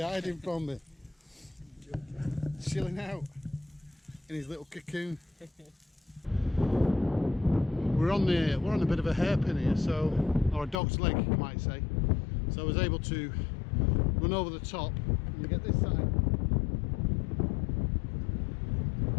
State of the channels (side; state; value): right; drops out; at 10.8 s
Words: hiding from me. Chilling out in his little cocoon. We're on a bit of a hairpin here, or a dog's leg, you might say. So I was able to run over the top and get this side.